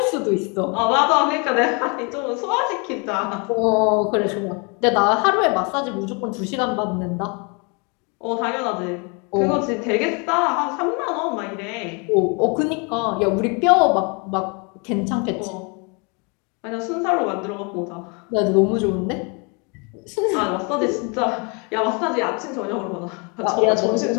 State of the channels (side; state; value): right; quieter; 32.9 dB